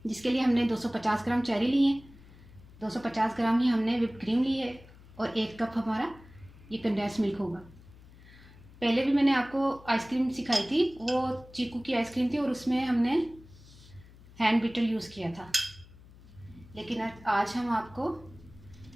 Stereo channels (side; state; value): left; noise; hum, 22 dB below the sound